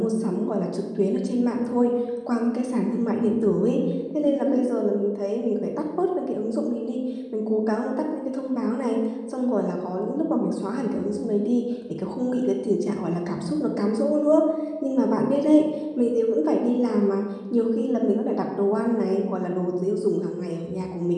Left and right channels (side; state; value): both; identical; correlation 1.00